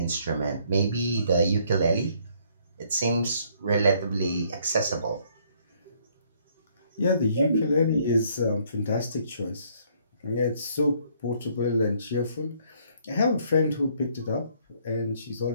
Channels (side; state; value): both; inverted; correlation -0.65